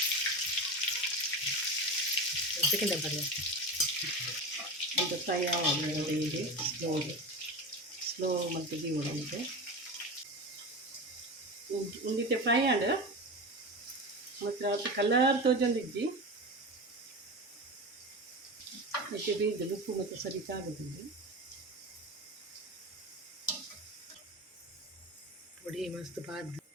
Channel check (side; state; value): both; normal; correlation 0.25